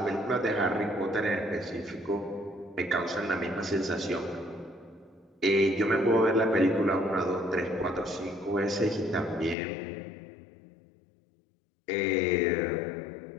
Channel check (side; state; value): right; drops out; at 9.6 s